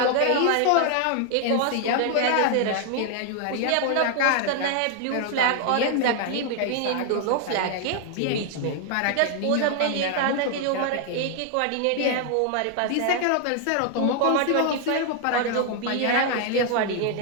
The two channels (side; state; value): both; different; correlation 0.00